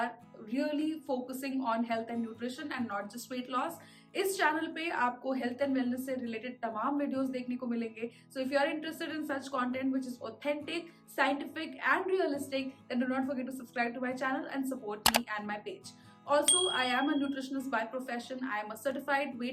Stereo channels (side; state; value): both; identical; correlation 1.00